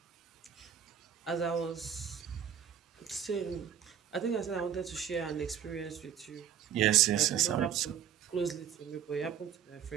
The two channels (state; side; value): quieter; left; 8.9 dB